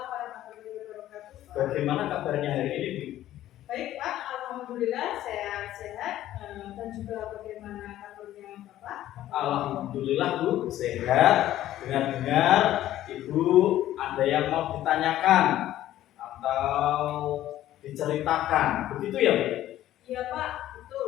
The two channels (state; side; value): quieter; right; 13.4 dB